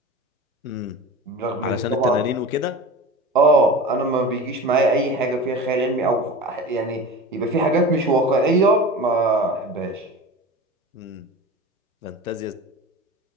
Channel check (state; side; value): normal; both; correlation 0.33